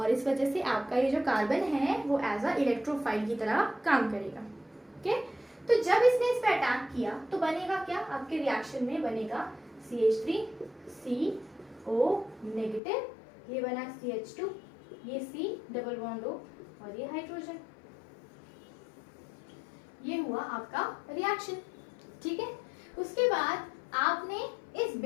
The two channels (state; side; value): drops out; right; at 12.8 s